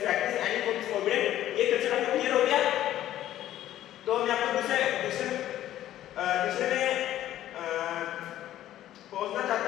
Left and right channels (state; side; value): quieter; right; 12.9 dB